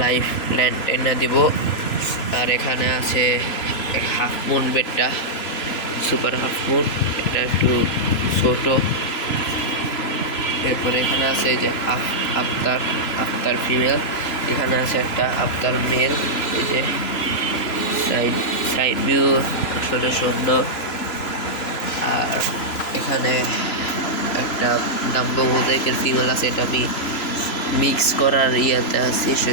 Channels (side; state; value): right; late; 3.0 ms